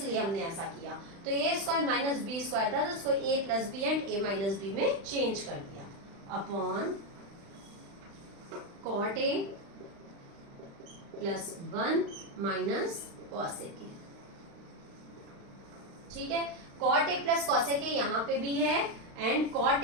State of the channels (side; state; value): left; late; 36 ms